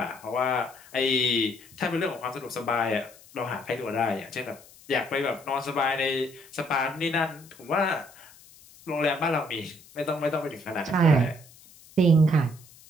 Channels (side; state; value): left; noise; hiss, 23 dB below the sound